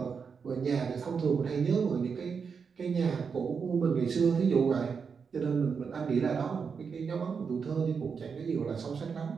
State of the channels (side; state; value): left; quieter; 5.9 dB